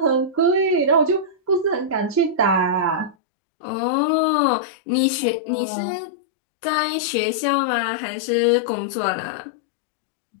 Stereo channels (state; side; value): drops out; right; at 3.2 s